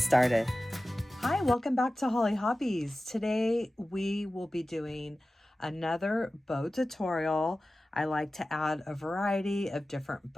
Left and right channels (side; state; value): both; normal; correlation 0.95